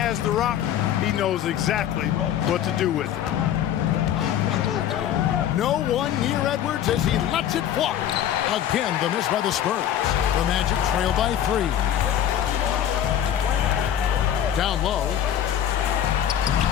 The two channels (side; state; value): right; quieter; 10.4 dB